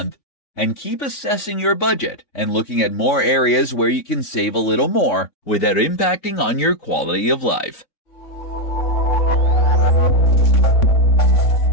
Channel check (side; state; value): right; late; 3.6 ms